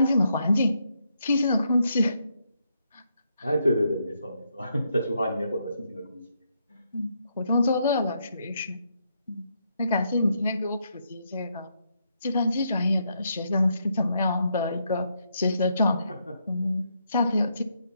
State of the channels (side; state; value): both; inverted; correlation -0.78